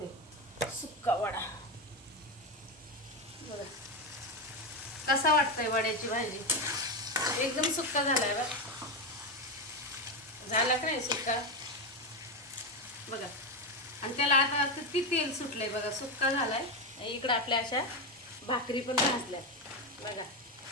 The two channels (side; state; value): both; normal; correlation 0.12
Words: सुक्का वडा. बघा कसा वाटतंय वड्याची भाजी. एकदम सुक्का झालाय बघ. झाला का नाही सुक्का बघा. आणि त्याला आता किती तेल सुटलंय बघा. सुक्का झालाय. इकडं आपल्या अशा भाकरी पण भाजल्या बघा.